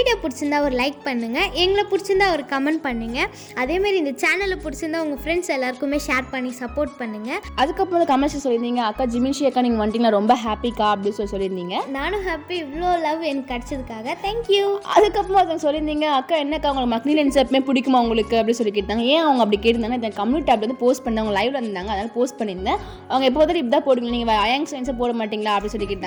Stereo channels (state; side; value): identical; both; correlation 1.00